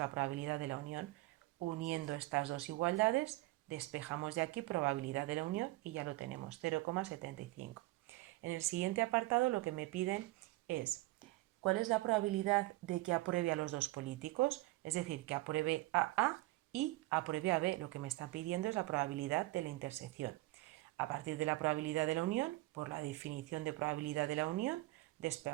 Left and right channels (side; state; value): left; quieter; 19.9 dB